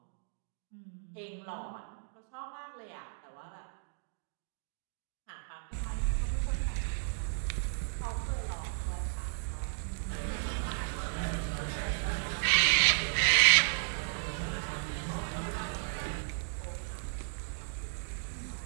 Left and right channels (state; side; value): silent; left; digital silence